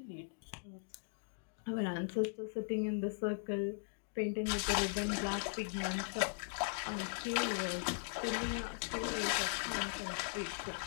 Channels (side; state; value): right; silent; digital silence